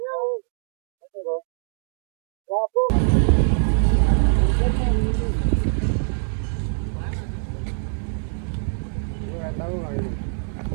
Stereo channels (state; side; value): silent; left; 59 dB below the other